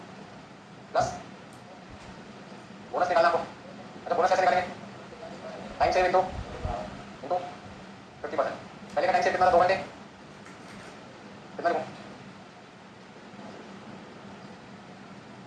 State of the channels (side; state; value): both; identical; correlation 1.00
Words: प्लस बोनस निकालना आपको। अच्छा बोनस कैसे निकालेंगे? Time save into 50%। पहले का टाइम सेव कितना था? 2 घंटे। कितना लिखूं?